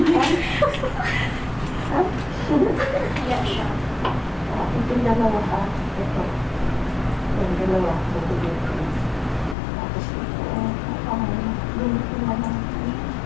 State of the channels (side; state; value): right; drops out; at 9.6 s